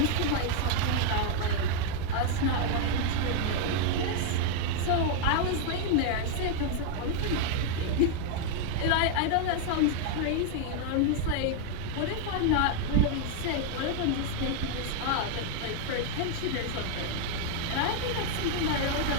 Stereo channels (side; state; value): both; different; correlation 0.00